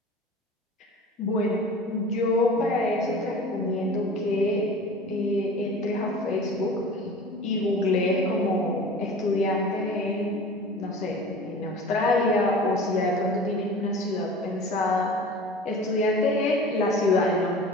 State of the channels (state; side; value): normal; both; correlation 0.39